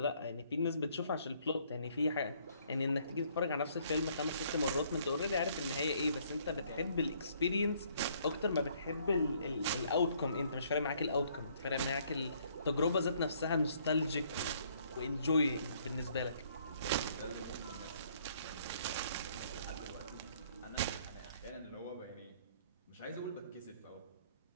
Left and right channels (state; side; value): inverted; both; correlation -0.64